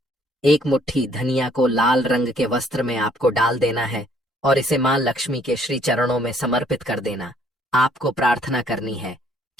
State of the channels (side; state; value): both; normal; correlation 0.63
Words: 1 मुट्ठी धनिया को लाल रंग के वस्त्र में आपको डाल देना है और इसे मां लक्ष्मी के श्री चरणों में समर्पित कर देना। आपको प्रार्थना करनी है